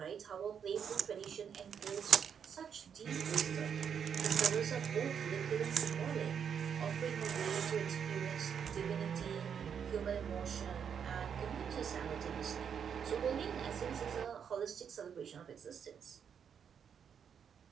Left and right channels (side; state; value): left; quieter; 7.6 dB